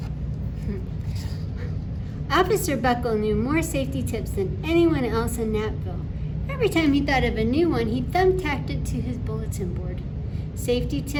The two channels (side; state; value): both; identical; correlation 1.00